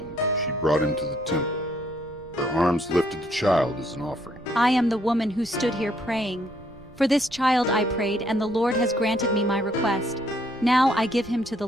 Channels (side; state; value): right; noise; rumble, 22 dB below the sound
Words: she brought him to the temple. Her arms lifted the child as an offering. I am the woman who stood here praying. For this child I prayed, and the Lord has granted me my request. Now I give him to the